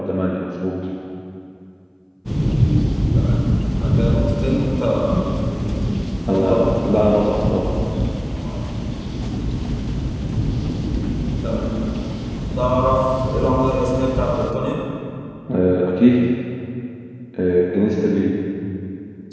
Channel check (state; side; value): identical; both; correlation 1.00